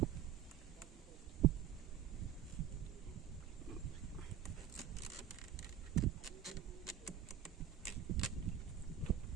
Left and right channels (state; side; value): quieter; left; 10.0 dB